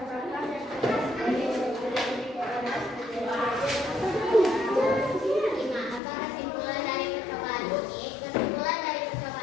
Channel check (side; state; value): right; drops out; at 6.0 s